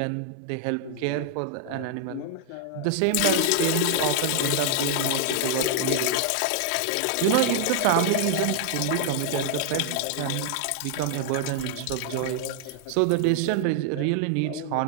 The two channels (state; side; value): different; both; correlation 0.00